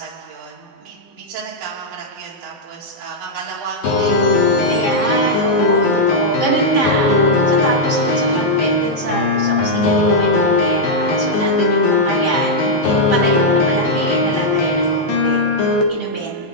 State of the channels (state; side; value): normal; both; correlation -0.05